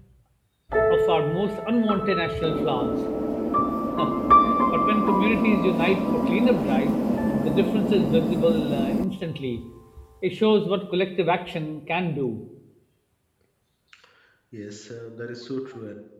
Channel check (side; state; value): both; identical; correlation 1.00